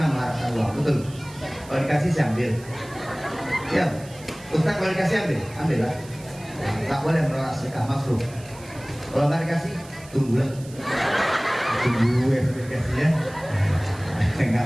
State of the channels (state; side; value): noise; right; hiss, 21 dB below the sound